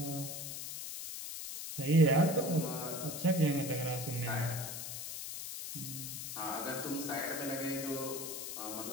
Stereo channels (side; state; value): left; noise; hiss, 6 dB below the sound